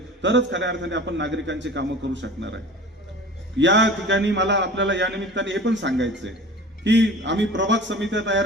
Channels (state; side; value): normal; both; correlation 0.39